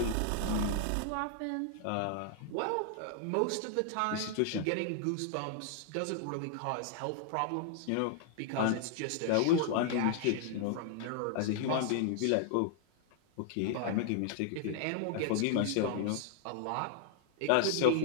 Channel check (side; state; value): both; different; correlation 0.00